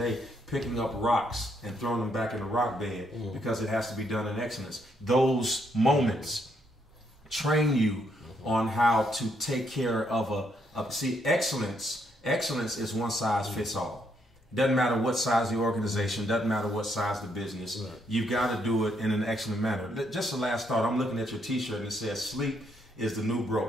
picking up rocks and throwing them back in the rock bed because it has to be done in excellence. Those moments train you on how to take care of see, excellence is one size fits all. Doesn't matter what size the organization, doesn't matter what size the business. Right. You've got to do it in an excellent manner. Just the last thought, I'm looking at your t-shirt and it says sleep is the new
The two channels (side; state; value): both; normal; correlation 0.74